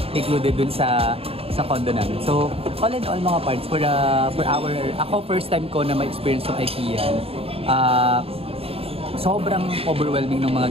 included dun sa condo namin. So, all in all mga parts, ako first time ko na ma-experience ng IKEA. Sobrang overwhelming ng mga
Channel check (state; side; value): late; left; 0.28 ms